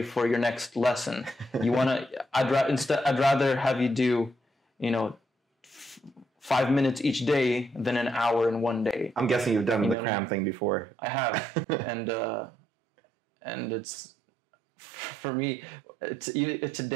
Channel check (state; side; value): drops out; left; at 10.0 s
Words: for your next lesson. I'd rather have you do, 5 minutes each day than an hour in one day. I'm guessing you've done the cram thing before. I have, and it's, for me,